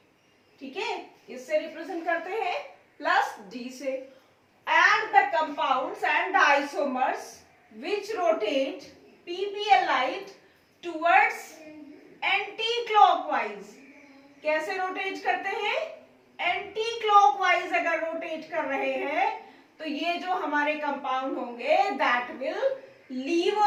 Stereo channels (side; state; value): both; identical; correlation 1.00